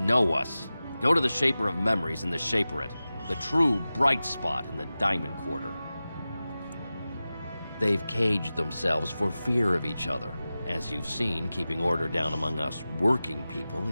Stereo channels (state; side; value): inverted; both; correlation -0.95